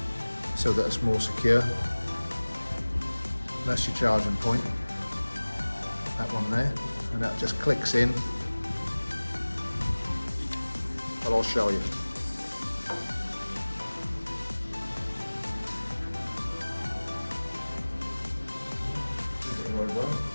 so that it's more secure. That's your charging point, that one there, and that just clicks in. But I'll show you.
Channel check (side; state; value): both; inverted; correlation -1.00